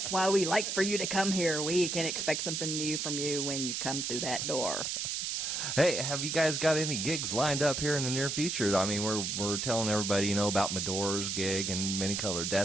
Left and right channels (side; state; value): right; noise; hiss, 2 dB below the sound